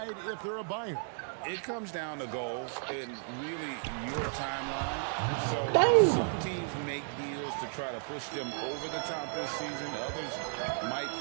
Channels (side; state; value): left; silent; 55 dB below the other